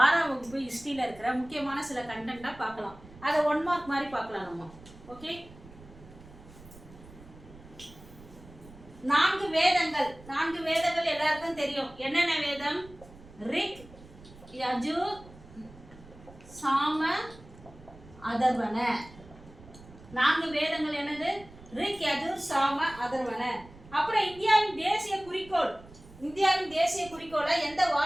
6ஆம் வகுப்பு ஹிஸ்ட்ரியில் இருக்கிற முக்கியமான சில கண்டென்ட்டாக பார்க்கலாம். அதை 1 மார்க் மாதிரி பார்க்கலாம் நம்ம. ஓகே, 4 வேதங்கள். 4 வேதங்கள் எல்லாருக்கும் தெரியும். என்னென்ன வேதம்? ரிக், யஜுர், சாம, அதர்வன. 4 வேதங்கள் என்னது? ரிக், யஜுர், சாம, அதர்வன. அப்புறம் இந்தியாவின் தேசிய குறிக்கோள். இந்தியாவின் தேசிய குறிக்கோளை எந்த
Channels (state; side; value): noise; right; rumble, 20 dB below the sound